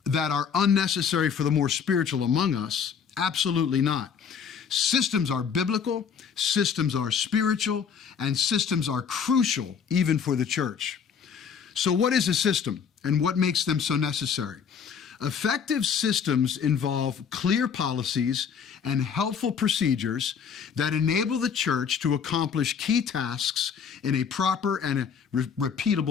are unnecessary for the more spiritual among us. Absolutely not. Systems are biblical, systems are spiritual, and systems are crucial even for the church. So what is a system and what makes them so necessary? Effective systems involve clear policies and helpful procedures that enable the church to accomplish key tasks in a proper and a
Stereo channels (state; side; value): quieter; right; 7.0 dB